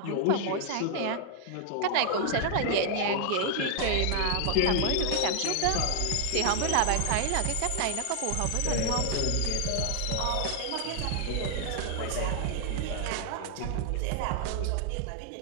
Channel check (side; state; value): both; different; correlation 0.00